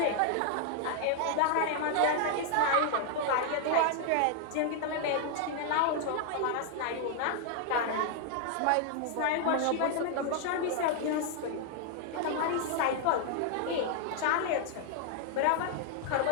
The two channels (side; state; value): both; different; correlation 0.00